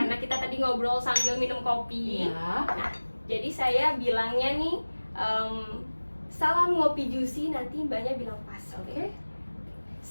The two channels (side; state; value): both; inverted; correlation -1.00